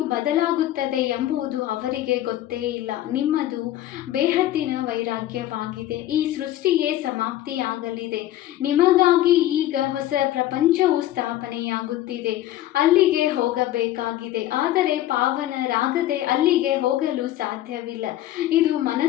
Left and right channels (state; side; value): quieter; right; 13.9 dB